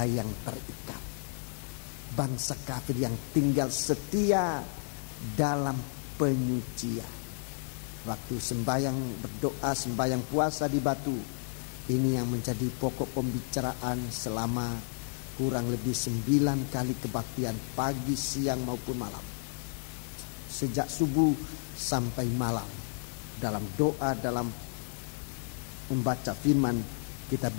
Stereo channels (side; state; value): right; silent; 56 dB below the other